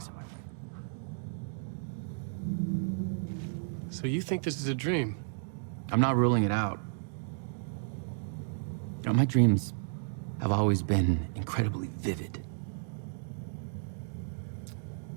in my way. So you think this is a dream? I'm not ruling it out. You know, my dreams have always been incredibly vivid.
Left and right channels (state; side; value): silent; left; digital silence